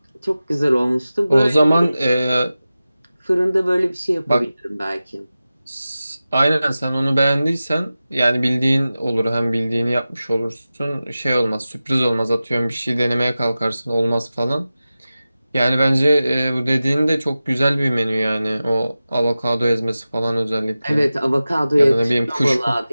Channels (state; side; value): inverted; both; correlation -0.95